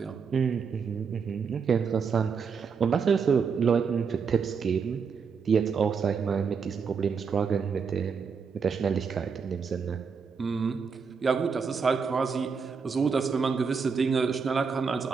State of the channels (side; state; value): left; quieter; 5.8 dB